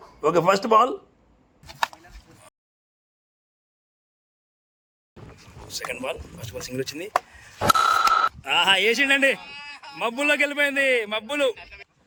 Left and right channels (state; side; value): identical; both; correlation 1.00